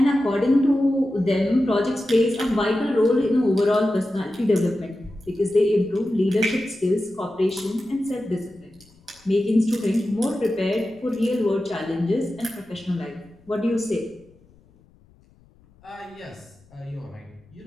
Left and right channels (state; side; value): noise; left; rumble, 29 dB below the sound